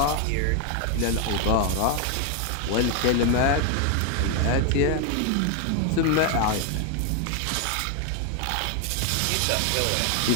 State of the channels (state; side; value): different; both; correlation 0.01